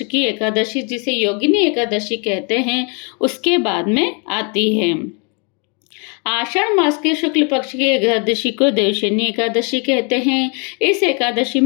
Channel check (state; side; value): quieter; right; 35.1 dB